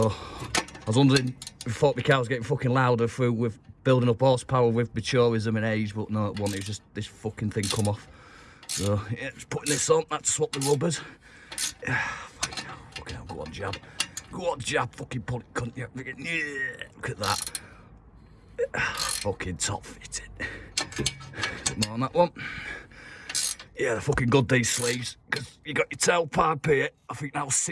I was wondering, I thought my car was getting fucking louder through with building up horsepower with maturism and age, but no, it wasn't. It was just this fucking thing come off. So yeah, just putting this on. Had to swap the rubbers. Fucking hell, go on, Jab. Go on, Jab. Fucking pull it, cunt. Yeah, look at that. Fucking top fitting. More on that one. Yeah, they're fucking good, these sleeves, because you got your tailpipe here. I think that was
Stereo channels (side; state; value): both; identical; correlation 1.00